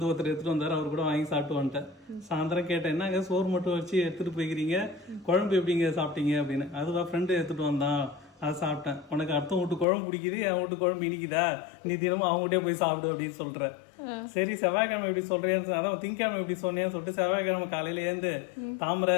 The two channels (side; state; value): right; drops out; at 9.9 s